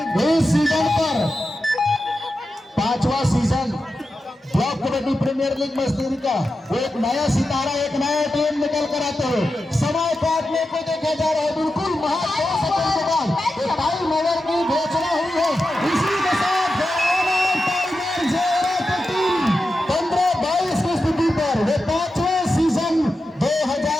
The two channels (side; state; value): both; normal; correlation 0.90